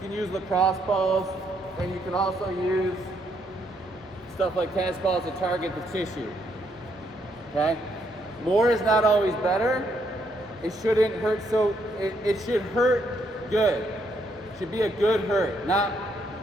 use lacrosse balls, and you can also use stuff like tennis balls to target the tissue, okay? More is not always better. It shouldn't hurt, so it should hurt good. It should be a good hurt, not,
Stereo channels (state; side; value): normal; both; correlation 0.74